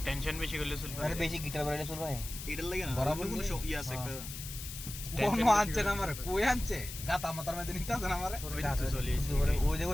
টেনশন বেশি করলে চুল আরে বেশি গিটার বাজালে চুল ভাই এটার লাগে না বরাবর কোনো ইয়ে আছে একটা কোন আনছে না আমারে কই আনছে গাতা মাথার মধ্যে নিতে আছে না আমারে ওই তো চলে এসে ওই দেখো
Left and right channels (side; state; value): left; noise; hiss, 10 dB below the sound